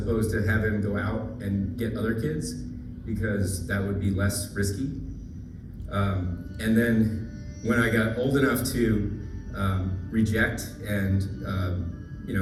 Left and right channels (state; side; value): identical; both; correlation 1.00